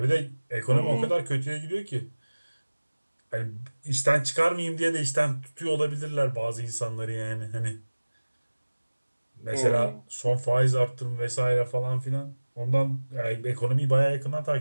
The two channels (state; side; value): inverted; both; correlation -1.00